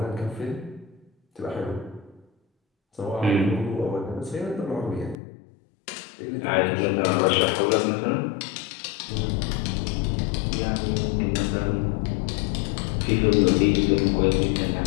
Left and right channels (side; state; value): right; drops out; at 5.2 s